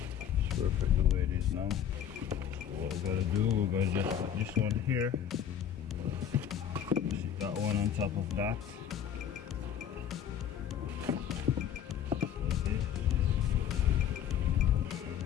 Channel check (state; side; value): quieter; right; 9.3 dB